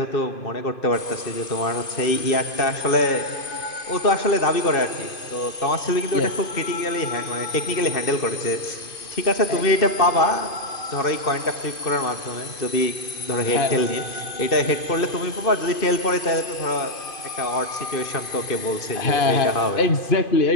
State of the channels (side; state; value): right; late; 2.5 ms